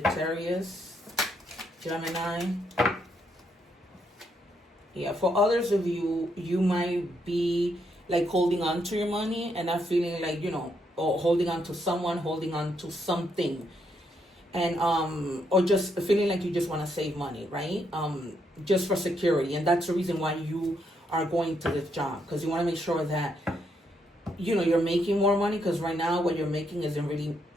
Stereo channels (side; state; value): both; normal; correlation 0.76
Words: Gemini. Yeah, for others of you, you might be like holding on to your money and not feeling like, you know, or holding on to someone, holding on to something. And or just feeling like you just want to save money, right? Just for security. And that's the reason why you are going to this job, because you want to make sure that, you know, you're making more money, because right now what you're making isn't really,